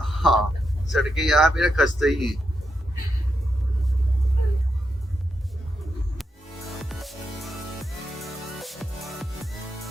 सड़कें यहाँ पे ना खस्ते ही हैं।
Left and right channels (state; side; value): normal; both; correlation 0.84